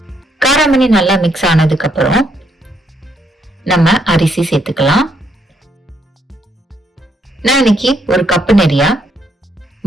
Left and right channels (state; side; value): normal; both; correlation 0.73